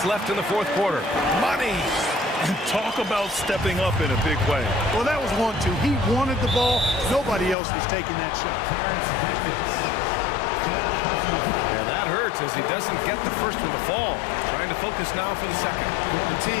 left in the fourth quarter. Money. And talk about stepping up in a big way. Well, that was 1-2. He wanted the ball. Nobody else was taking that shot. And that hurts as he doesn't get the first one to fall. Trying to focus now for the second. The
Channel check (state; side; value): drops out; right; at 7.6 s